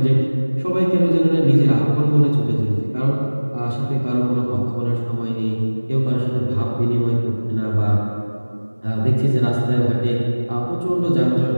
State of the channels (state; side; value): inverted; both; correlation -1.00